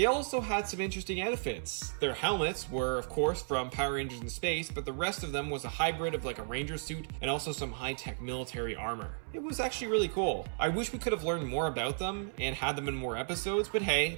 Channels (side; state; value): left; silent; 55 dB below the other